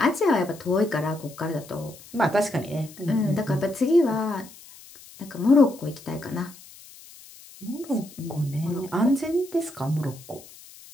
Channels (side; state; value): left; noise; hiss, 20 dB below the sound